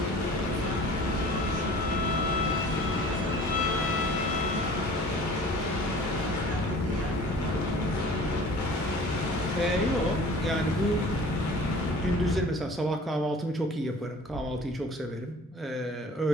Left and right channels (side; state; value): both; normal; correlation 0.45